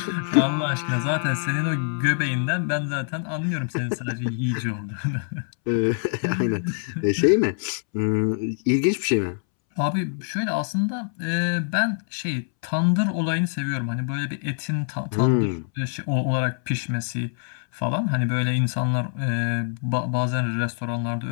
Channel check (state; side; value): silent; right; 62 dB below the other